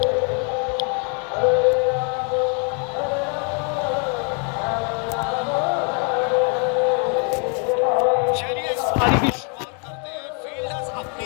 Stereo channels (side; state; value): right; quieter; 38.8 dB